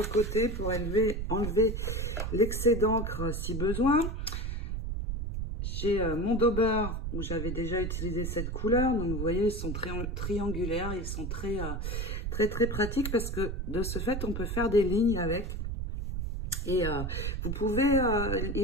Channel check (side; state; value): right; noise; rumble, 3 dB below the sound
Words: côté pour enlever l'excès d'encre si besoin. J'ai mon Dauber où j'avais déjà utilisé cette couleur. Donc, vous voyez, ils sont très triangulaires. Ils sont très pratiques parce que de ce fait, on peut faire des lignes avec. Et vous pouvez,